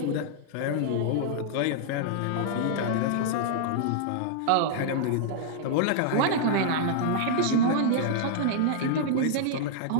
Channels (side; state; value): both; different; correlation -0.01